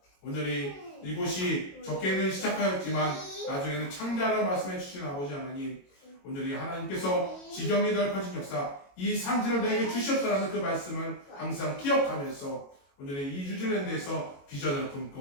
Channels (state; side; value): late; right; 22 ms